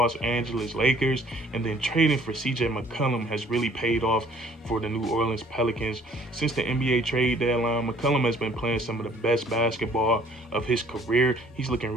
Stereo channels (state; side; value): normal; both; correlation 0.57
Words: Angeles Lakers. And then trading for CJ McCollum has really paid off for the New Orleans Pelicans. Since the NBA trade deadline, McCollum has been playing some of the best basketball of his career. He's looking